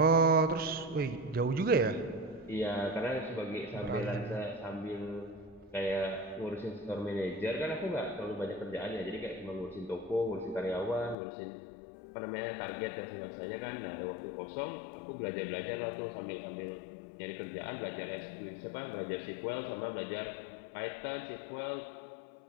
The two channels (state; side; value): drops out; right; at 11.2 s